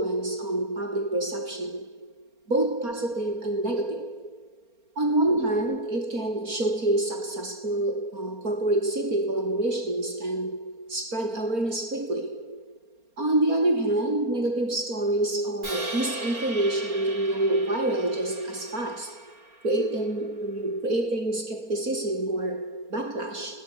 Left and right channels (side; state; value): left; late; 4.3 ms